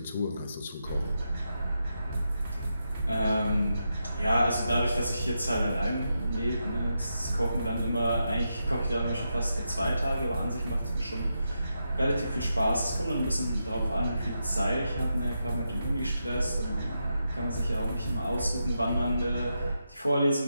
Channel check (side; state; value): both; inverted; correlation -0.86